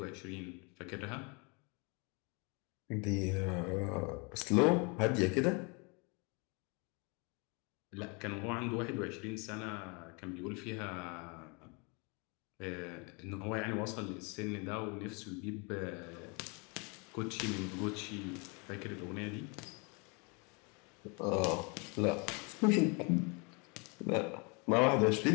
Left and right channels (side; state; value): right; quieter; 31.7 dB